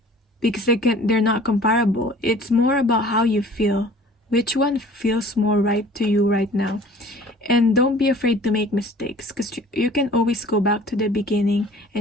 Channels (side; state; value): both; normal; correlation 0.49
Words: because they're not comparable. It's more about how you feel. Which one feels more right to you right now? And don't be afraid to make mistakes, because you can always go back to the beginning